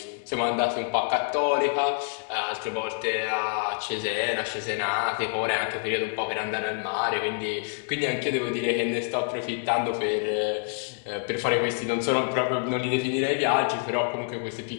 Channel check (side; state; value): right; silent; 60 dB below the other